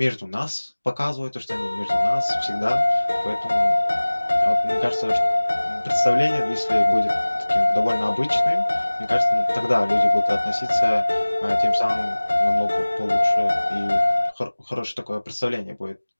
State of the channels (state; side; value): inverted; both; correlation -1.00